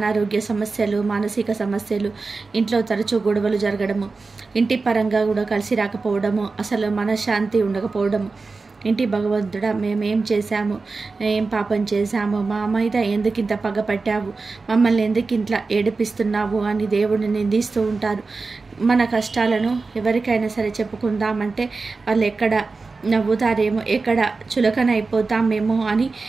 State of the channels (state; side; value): quieter; left; 4.0 dB